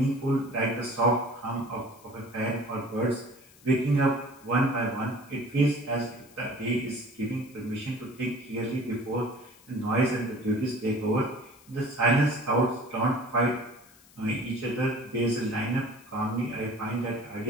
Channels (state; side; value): noise; left; hiss, 26 dB below the sound